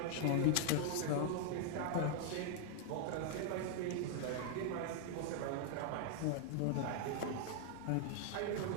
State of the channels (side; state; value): both; different; correlation 0.00